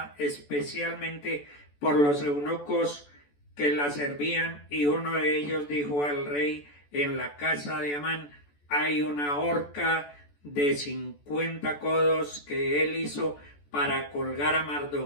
especialmente por los eunucos que la servían, y uno de ellos dijo al rey: en la casa de Amán hay una horca de 50 codos que él hizo para colgar a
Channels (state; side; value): late; right; 14 ms